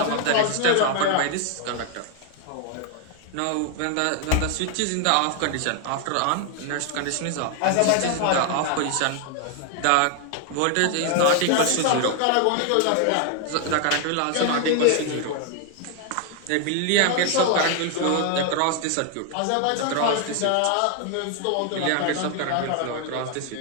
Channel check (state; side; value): different; both; correlation 0.00